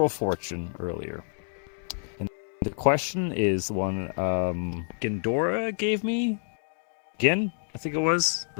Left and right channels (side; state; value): right; silent; digital silence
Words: fortune earlier. And the question is one Gindora gave me. Gin, I think it was.